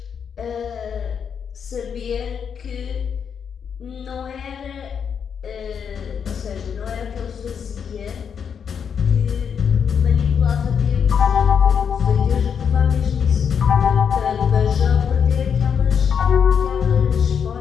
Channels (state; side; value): quieter; right; 7.2 dB